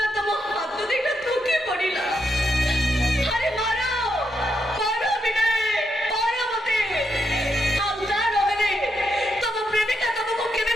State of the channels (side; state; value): both; normal; correlation 0.81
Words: तम हाथ देखा धोकी पड़िला अरे मारो मारो विनय मारो मते आउता रहे तम प्रेमिका तुमको केबे